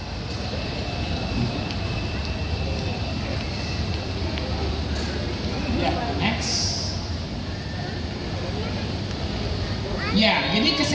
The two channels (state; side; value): identical; both; correlation 1.00